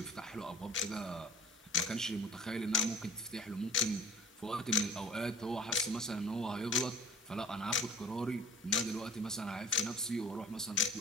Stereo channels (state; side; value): normal; both; correlation 0.46